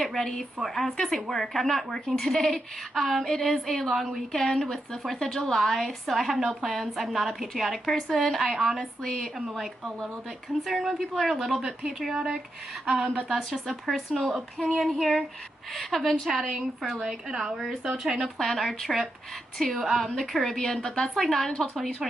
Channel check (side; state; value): both; normal; correlation 0.85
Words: ready for, I was gonna say work. I'm not working today. It is a long weekend with the 4th of July, so I have no plans. I'm not a patriotic person. I honestly am like a little bit concerned when people are a little bit patriotic, but that's just a personal opinion here. I've been chatting for like an hour or so trying to plan our trip to the Caribbean, but that's like not until